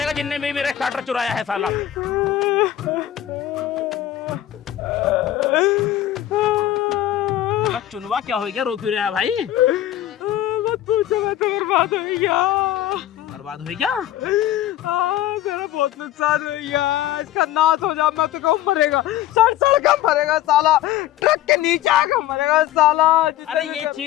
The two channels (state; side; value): quieter; right; 12.9 dB